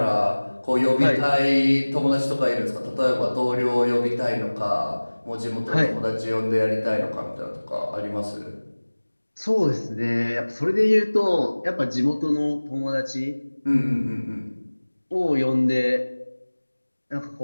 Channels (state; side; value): inverted; both; correlation -1.00